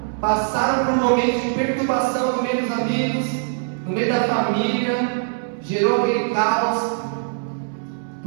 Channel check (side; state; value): left; silent; 64 dB below the other